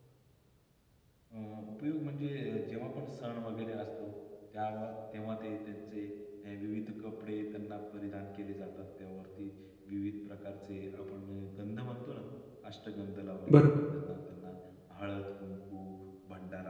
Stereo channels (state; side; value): identical; both; correlation 1.00